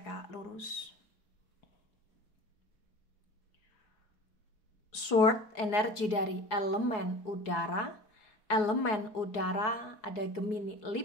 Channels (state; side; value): late; right; 4.8 ms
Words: lurus. Sword energi dari elemen udara. Elemen udara ada Gemini,